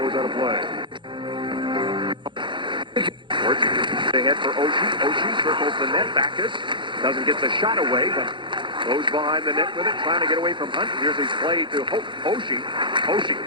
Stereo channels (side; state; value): left; late; 0.23 ms